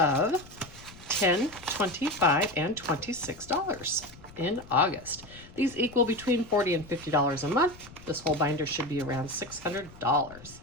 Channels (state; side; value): noise; left; rumble, 20 dB below the sound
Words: $10, $25, and $26 in August. These equal between $40 and $50 a month. This whole binder should be around $600.